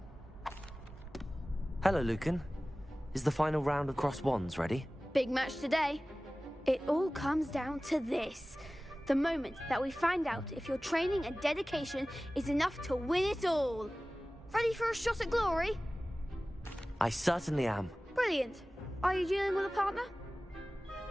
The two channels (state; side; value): normal; both; correlation 0.97